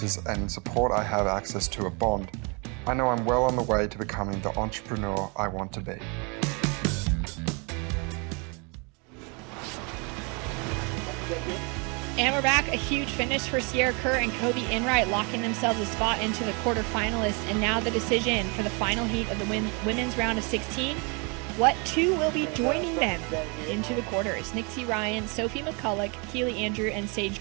and support I have access to at Bond, I know I'm well on the way to becoming the entrepreneur I want to be. And we're back. A huge finish for Sierra Kerr and Kobe Enright, locking themselves a spot into the quarterfinalists. And now the decision for the final heat of the women's round of 16. What two will be joining them into the quarters? Nixie Ryan, Sophie McCulloch, Keely Andrew, and Sage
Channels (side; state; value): left; quieter; 32.4 dB